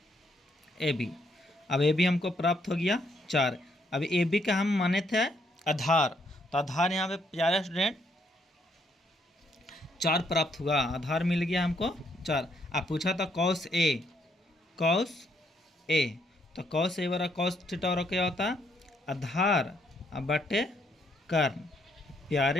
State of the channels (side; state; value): both; normal; correlation 0.72